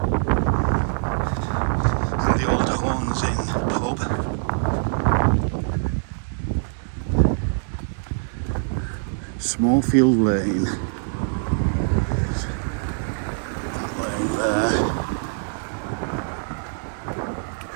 the old Horns Inn pub. Smallfield Lane. That lane there.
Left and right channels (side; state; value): left; silent; digital silence